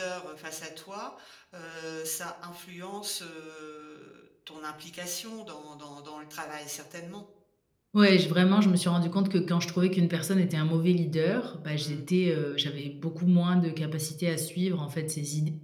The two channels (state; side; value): identical; both; correlation 1.00